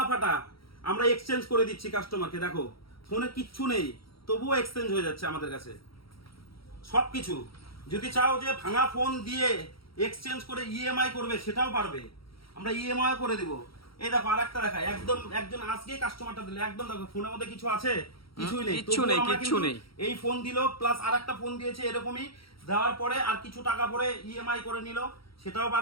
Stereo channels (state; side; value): late; right; 0.75 ms